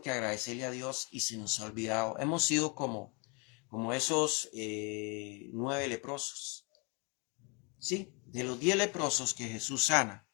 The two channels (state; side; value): quieter; right; 32.5 dB